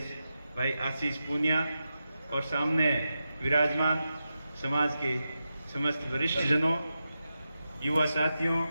भाई आशीष पूनिया और सामने विराजमान समाज के समस्त वरिष्ठ जनों, युवा साथियों,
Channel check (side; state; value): both; inverted; correlation -0.90